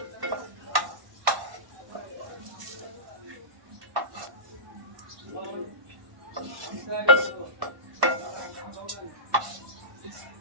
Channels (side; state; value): left; late; 1.1 ms